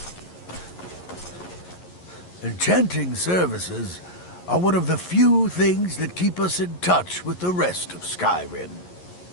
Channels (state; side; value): late; right; 11 ms